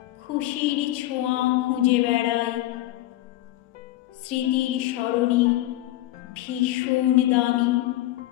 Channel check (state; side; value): quieter; right; 15.7 dB